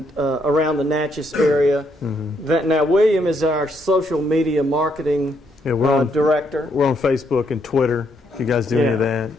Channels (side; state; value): both; normal; correlation 0.75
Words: around the Natchez area. Now, William is our social media marketing Yeah, we're on director. We're on Facebook and Twitter, if you guys do any of that.